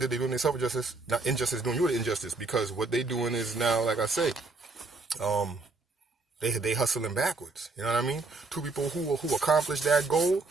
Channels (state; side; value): quieter; left; 3.6 dB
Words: they do themselves injustice, not injustice, doing you the injustice, because what they doing is now, like I say, they hustling backwards. You know what I mean? Two people who accomplish that goal,